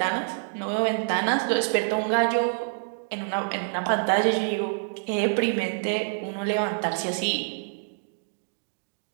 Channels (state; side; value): silent; left; digital silence